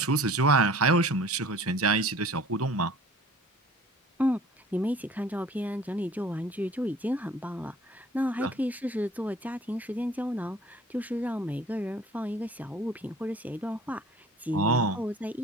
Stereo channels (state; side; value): normal; both; correlation 0.48